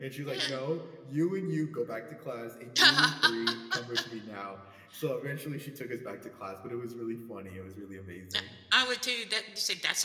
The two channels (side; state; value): both; identical; correlation 1.00